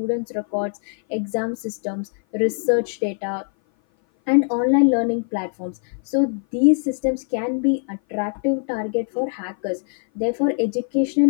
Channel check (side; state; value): right; silent; 57 dB below the other